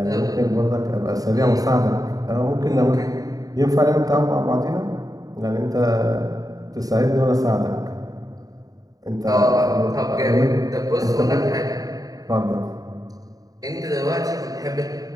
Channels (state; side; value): late; left; 0.18 ms